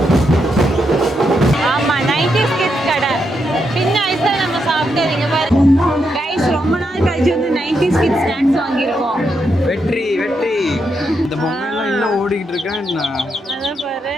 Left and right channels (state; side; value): normal; both; correlation 0.82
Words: ஆமா, 90s கிட்ஸ் கடை. சின்ன வயசுல நம்ம சாப்பிட்டதுங்க பாருங்க. கைஸ், ரொம்ப நாள் கழிச்சு வந்து 90s கிட்ஸ் ஸ்நாக்ஸ் வாங்கியிருக்கோம். வெற்றி வெற்றி. இந்த பொம்மையெல்லாம் இன்னும் ஓடிக்கிட்டு இருக்கேன். அதான் பாரு.